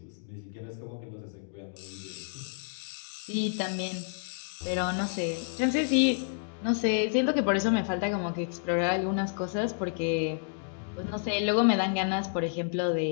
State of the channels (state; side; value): silent; right; digital silence